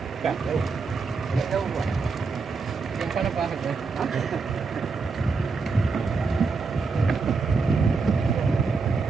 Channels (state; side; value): quieter; left; 4.6 dB